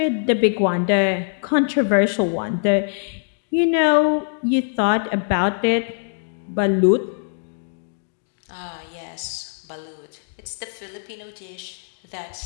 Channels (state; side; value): silent; right; digital silence